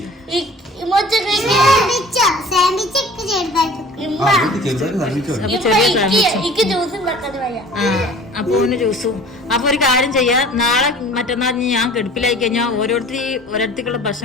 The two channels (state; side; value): normal; both; correlation 0.46